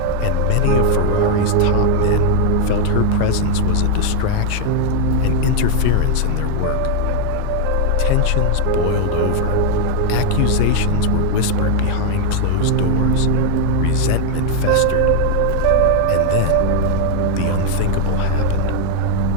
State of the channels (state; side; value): different; both; correlation 0.00